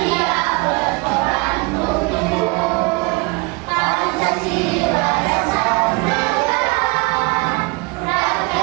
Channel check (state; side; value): quieter; left; 27.3 dB